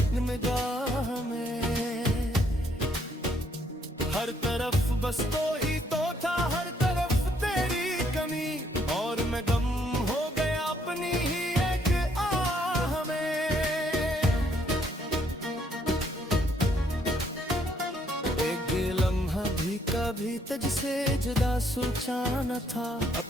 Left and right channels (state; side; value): normal; both; correlation 0.69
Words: निगाह में। हर तरफ बस तो ही तो था, हर तरफ तेरी कमी, और मैं गम हो गया अपनी ही एक आह में। एक लम्हा भी कभी तुझसे जुदा सोचा न था,